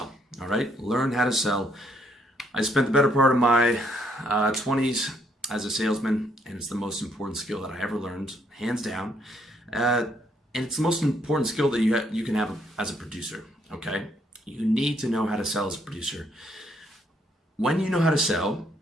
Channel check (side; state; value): both; normal; correlation 0.70